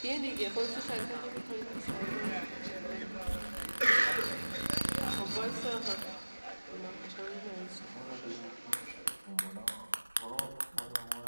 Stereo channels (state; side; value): inverted; both; correlation -1.00